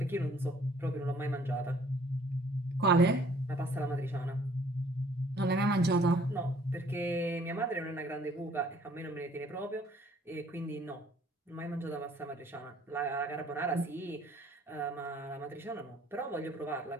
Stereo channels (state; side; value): normal; both; correlation 0.59